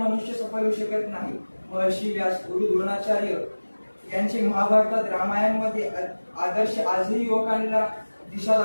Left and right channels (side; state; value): both; inverted; correlation -1.00